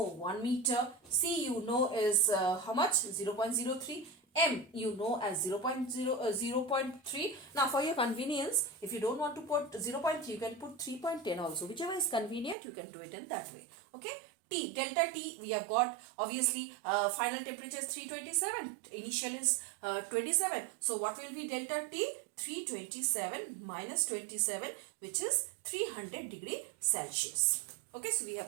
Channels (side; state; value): left; drops out; at 12.6 s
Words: 1 meter, C you know is how much? 0.03, M you know as 0.3. Now for your convenience, if you don't want to put 0.3, you can put 3.10 also. Whichever is convenient, you can do it in that way. Okay. T, delta T, we have got obviously final temperature is 327, initial is 27. So what will be delta T? 327 minus 27, which is 300 degree Celsius. Okay, so we